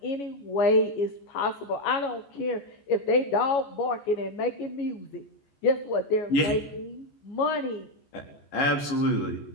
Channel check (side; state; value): right; late; 14 ms